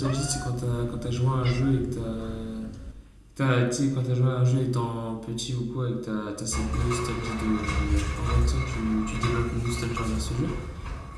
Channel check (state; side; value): identical; both; correlation 1.00